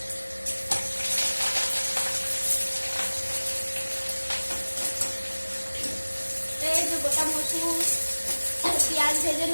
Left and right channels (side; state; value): both; inverted; correlation -1.00